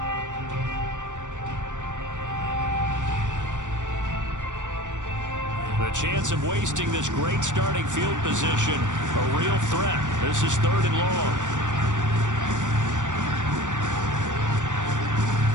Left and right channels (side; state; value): left; late; 0.86 ms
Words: The chance of wasting this great starting field position, a real threat. This is 3rd and long.